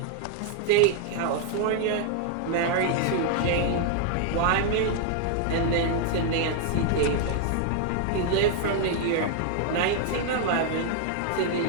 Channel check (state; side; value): different; both; correlation 0.00